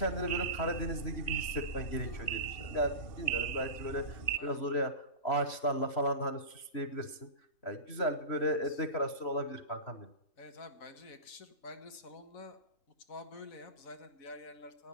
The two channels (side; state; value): right; late; 3.1 ms